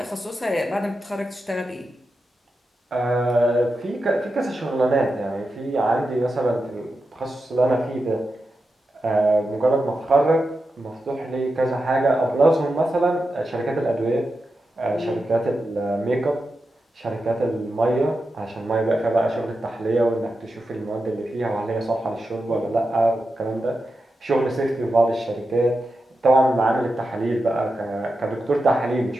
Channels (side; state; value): both; normal; correlation 0.89